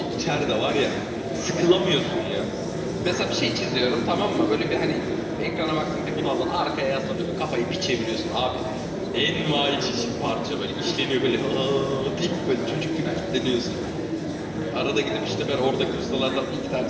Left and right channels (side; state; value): both; identical; correlation 1.00